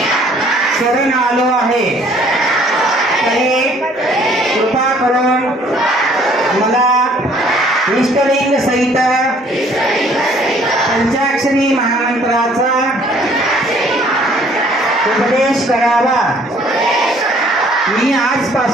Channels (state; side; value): normal; both; correlation 0.59